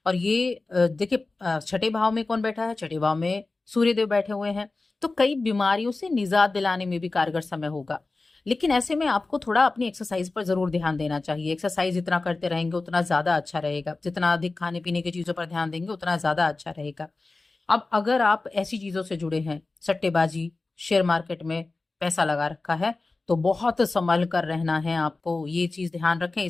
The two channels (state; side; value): quieter; right; 3.5 dB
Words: और ये देखिए, छठे भाव में कौन बैठा है? छठे भाव में सूर्यदेव बैठे हुए हैं, तो कई बीमारियों से निजात दिलाने में भी कारगर समय होगा। लेकिन ऐसे में आपको थोड़ा अपनी एक्सरसाइज पर जरूर ध्यान देना चाहिए। एक्सरसाइज जितना करते रहेंगे उतना ज्यादा अच्छा रहेगा, जितना अधिक खाने पीने की चीजों पर ध्यान देंगे उतना ज्यादा अच्छा रहेगा। अब अगर आप ऐसी चीजों से जुड़े हैं, सट्टेबाजी, शेयर मार्केट में पैसा लगा रखा है, तो बहुत संभल कर रहना है आपको। ये चीज ध्यान रखें,